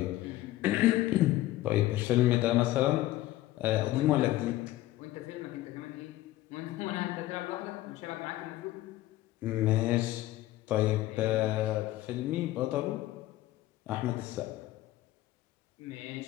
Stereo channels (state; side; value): quieter; right; 15.8 dB